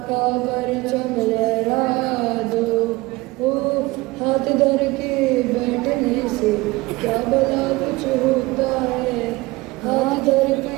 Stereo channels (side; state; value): left; quieter; 21.3 dB